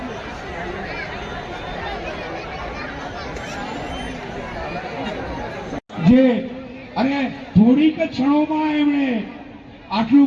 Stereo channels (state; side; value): identical; both; correlation 1.00